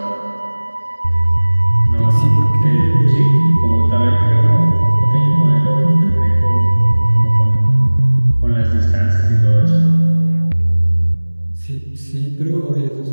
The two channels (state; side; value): inverted; both; correlation -1.00